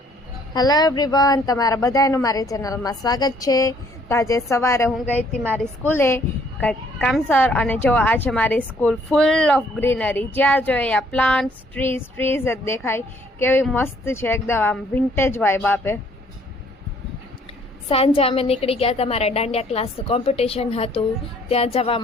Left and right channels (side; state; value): both; normal; correlation 0.63